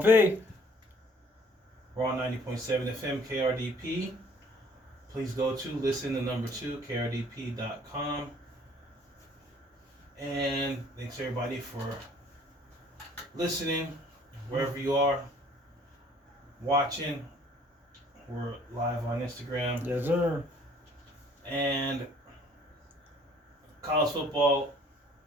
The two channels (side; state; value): both; normal; correlation 0.56